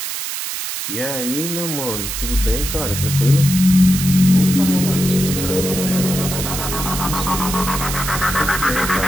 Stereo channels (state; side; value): noise; right; hiss, 5 dB below the sound